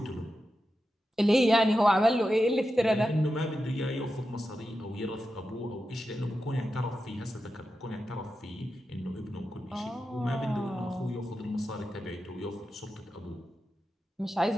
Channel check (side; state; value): both; normal; correlation 0.90